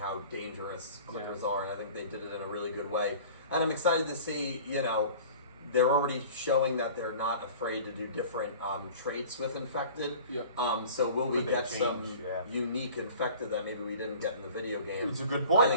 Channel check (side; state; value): both; inverted; correlation -0.43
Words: dangerous clickers are, and I think they did it in a really good way. and I'm excited to see, you know, they're already showing that they're not afraid to do different traits with infected. Yep. So will we Could they get change? some Yeah. unique infected that maybe we didn't get in the video game? It's a good point. I